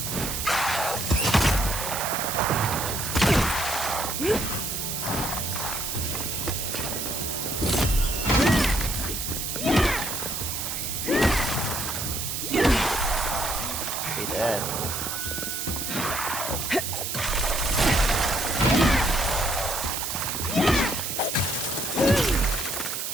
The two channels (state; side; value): noise; right; hiss, 3 dB below the sound